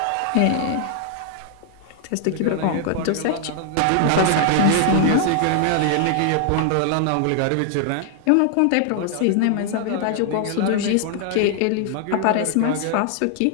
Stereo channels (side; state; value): both; different; correlation 0.00